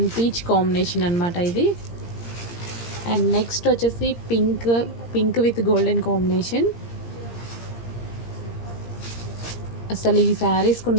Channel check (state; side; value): late; right; 17 ms